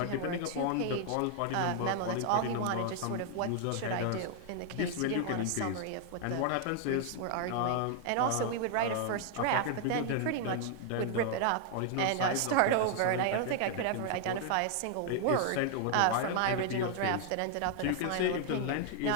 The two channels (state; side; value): different; both; correlation 0.00